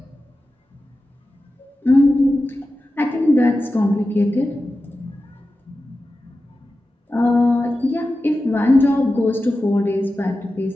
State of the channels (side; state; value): both; normal; correlation 0.93